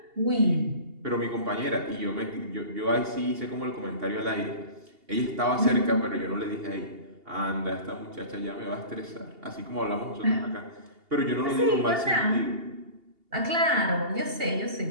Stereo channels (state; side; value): late; left; 2.8 ms